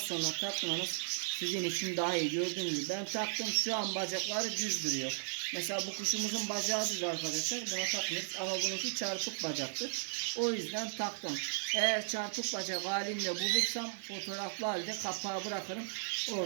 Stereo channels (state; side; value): silent; left; digital silence